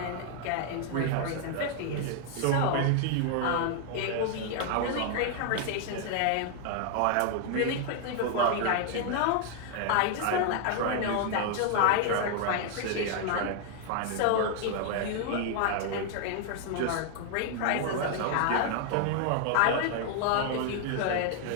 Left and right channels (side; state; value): both; different; correlation 0.00